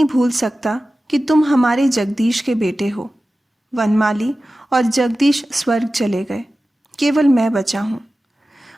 भूल सकता कि तुम हमारे जगदीश के बेटे हो। वनमाली और जगदीश स्वर्ग चले गए, केवल मैं बचा हूँ।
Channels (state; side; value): normal; both; correlation 0.95